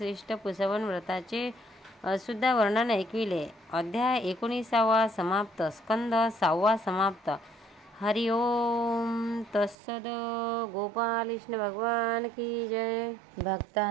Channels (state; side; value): drops out; left; at 9.8 s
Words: पुसवन व्रताचे सुद्धा वर्णन ऐकविले. अध्याय 19 समाप्त. स्कंद 6 समाप्त. हरि ओम तत्सद. गोपाल कृष्ण भगवान की जय.